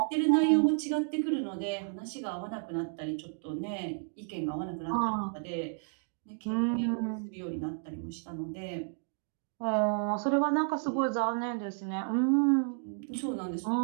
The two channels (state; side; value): silent; left; 57 dB below the other